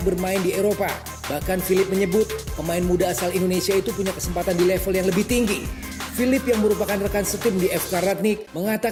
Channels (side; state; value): both; identical; correlation 1.00